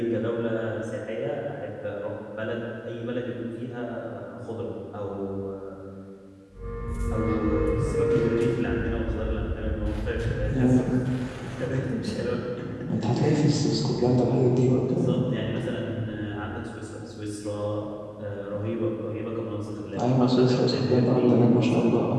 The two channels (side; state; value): both; identical; correlation 1.00